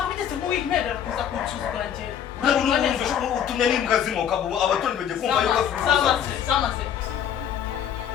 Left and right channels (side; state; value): right; quieter; 9.1 dB